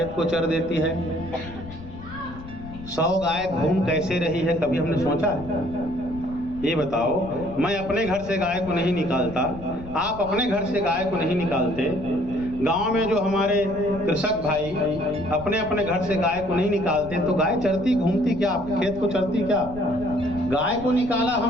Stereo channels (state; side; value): noise; left; rumble, 14 dB below the sound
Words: को चर देती है। 100 गाय घूम कैसे रही है, कभी हमने सोचा है? ये बताओ, मैं अपने घर से गाय को नहीं निकालता, आप अपने घर से गाय को नहीं निकालते, गांव में जो हमारे कृषक भाई अपने अपने घर से गाय को नहीं निकालते, तो गाय चरती घूमती क्या, खेत को चरती क्या? गाय को निकाला